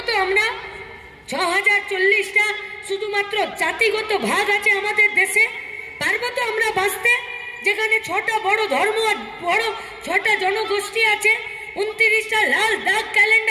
তো আমরা? 6040টা শুধুমাত্র জাতিগত ভাগ আছে আমাদের দেশে? পারবো তো আমরা বাঁচতে? যেখানে 6টা বড় ধর্ম, বড় 6টা জনগোষ্ঠী আছে, 29টা লাল দাগ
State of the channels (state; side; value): identical; both; correlation 1.00